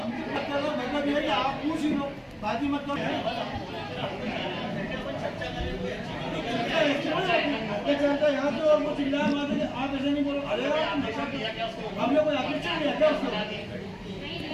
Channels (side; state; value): both; identical; correlation 1.00